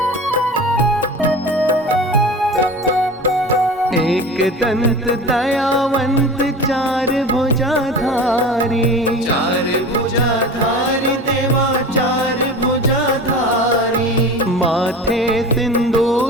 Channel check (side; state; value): both; normal; correlation 0.34